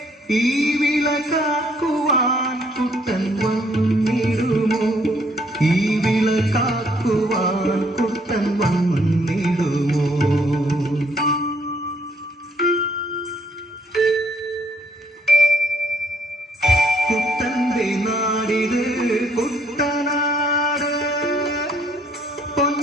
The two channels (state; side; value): normal; both; correlation 0.67